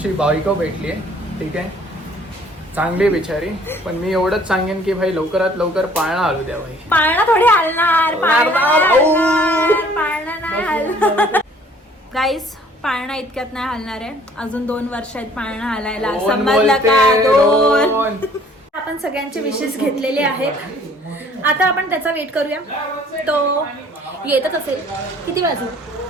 बायको भेटली आहे, ठीक आहे, चांगली बिचारी. पण मी एवढंच सांगेन की भाई लवकरात लवकर पाळणा हलू द्या भाई. पाळणा थोडी हलणार, पाळणा नाही हलणार. गाईस, पाळणा इतक्यात नाही हलणार आहे. अजून 2 वर्ष आहेत पाळणा हलायला. दोन समजलं बोलते, का? 2. दोन. आपण सगळ्यांचे विशेष घेतलेले आहेत. आता आपण त्याचा वेट करूया. तो येतच असेल. किती वाजू?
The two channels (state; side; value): normal; both; correlation 0.56